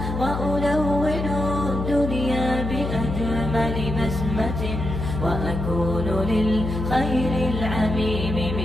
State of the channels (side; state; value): left; noise; hum, 3 dB below the sound